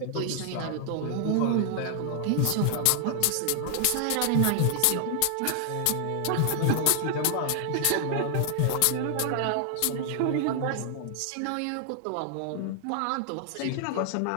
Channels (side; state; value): both; different; correlation 0.00